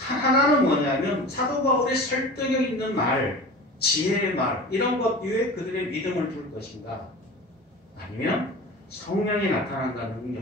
뭐냐면 사도 바울의 설득력 있는 말, 지혜의 말 이런 것 위에 그들의 믿음을 둘 것인가 아니면 성령이 나타난다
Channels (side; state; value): both; normal; correlation 0.36